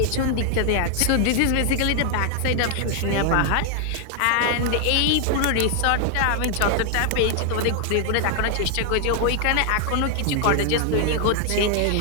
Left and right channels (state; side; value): different; both; correlation 0.00